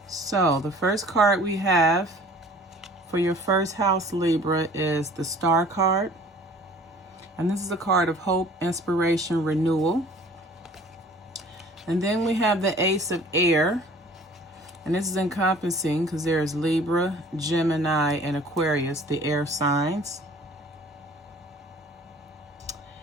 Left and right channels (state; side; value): normal; both; correlation 0.50